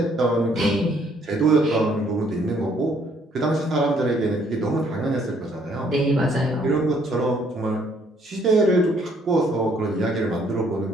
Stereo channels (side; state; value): both; normal; correlation 0.65